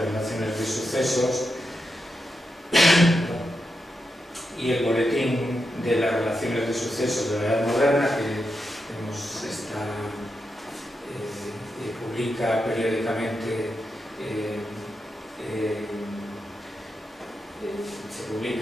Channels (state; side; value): normal; both; correlation 0.86